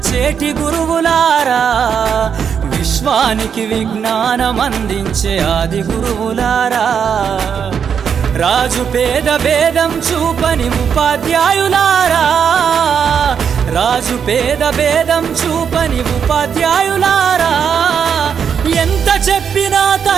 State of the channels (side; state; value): left; quieter; 7.3 dB